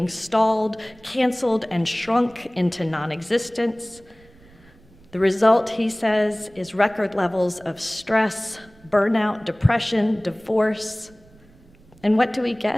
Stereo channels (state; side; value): noise; right; rumble, 27 dB below the sound